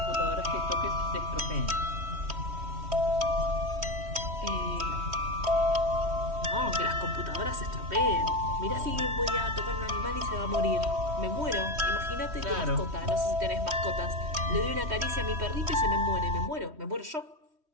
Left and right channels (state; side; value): late; left; 3.1 ms